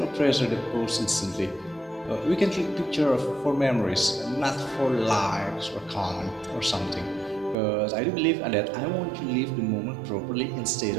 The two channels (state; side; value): drops out; left; at 7.6 s